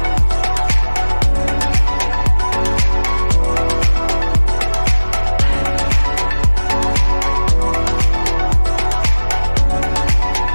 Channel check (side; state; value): both; inverted; correlation -1.00